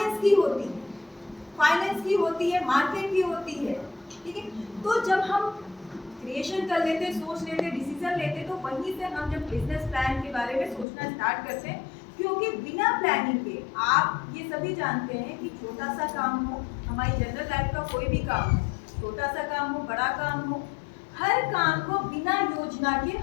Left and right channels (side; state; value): right; drops out; at 10.9 s